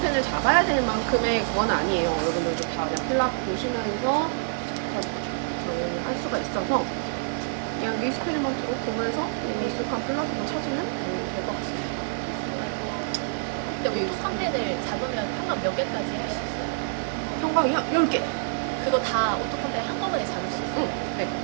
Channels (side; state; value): left; silent; 60 dB below the other